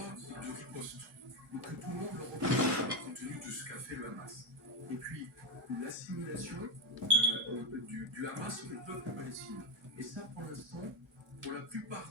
de riposte, donc que tout le monde le reconnaît compte tenu de ce qu'a fait le Hamas, et puis l'assimilation du Hamas au peuple palestinien. Et ça, pour l'instant, pour la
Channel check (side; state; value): both; normal; correlation 0.07